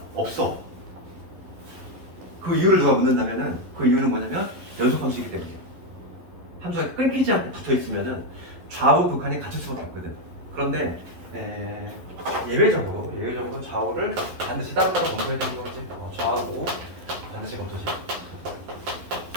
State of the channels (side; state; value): left; late; 11 ms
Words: 없어. 그 이유를 누가 묻는다면은 그 이유는 뭐냐면 연속함수이기 때문이에요. 함수가 끊기지 않고 붙어 있으면은 좌우극한이 같을 수밖에 없거든. 그런데 예외적으로 좌우를 반드시 따로따로 검토해야 되는 거지. 좌우 반드시 검토지.